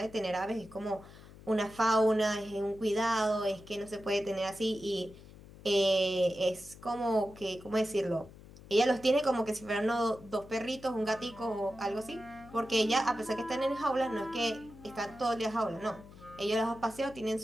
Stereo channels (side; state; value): left; noise; hum, 19 dB below the sound